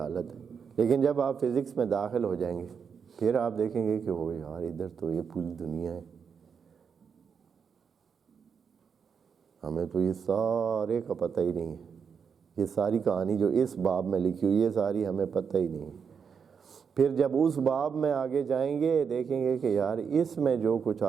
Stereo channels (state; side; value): quieter; left; 6.5 dB